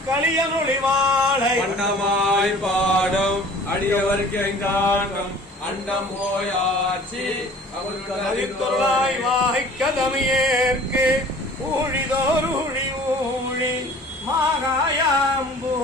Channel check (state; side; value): normal; both; correlation 0.47